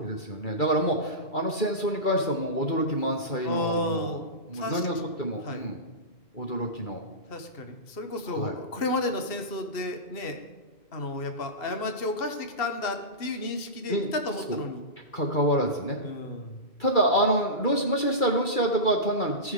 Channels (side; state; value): right; late; 2.3 ms